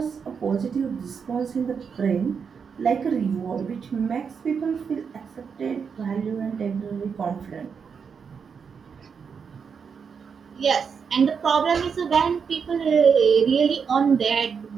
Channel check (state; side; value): quieter; left; 6.3 dB